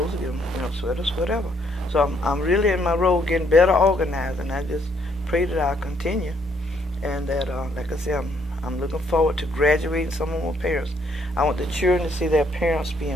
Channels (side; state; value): both; normal; correlation 0.69